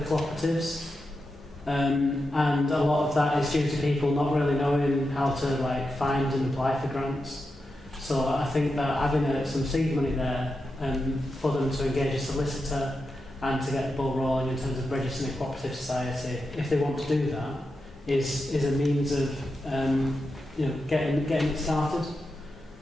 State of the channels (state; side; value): normal; both; correlation 0.88